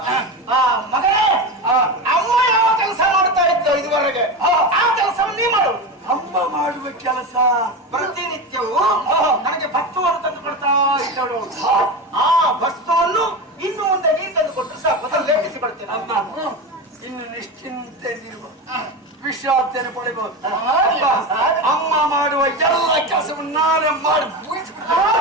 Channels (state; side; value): normal; both; correlation 0.21